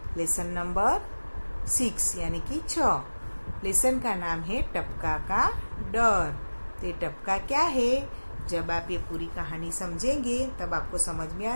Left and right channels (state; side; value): inverted; both; correlation -1.00